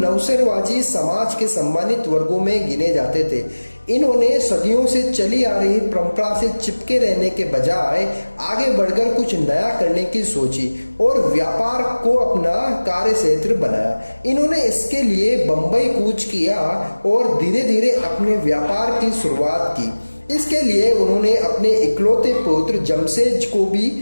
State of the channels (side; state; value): both; inverted; correlation -1.00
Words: समाज के सम्मानित वर्गों में गिने जाते थे। इन्होंने सदियों से चली आ रही परंपरा से चिपके रहने के बजाय आगे बढ़कर कुछ नया करने की सोची और व्यापार को अपना कार्य क्षेत्र बनाया। इन्होंने इसके लिए बंबई कूच किया और धीरे धीरे अपने व्यापार की शुरुआत की। इसके लिए उन्होंने अपने इकलौते पुत्र जमशेद को भी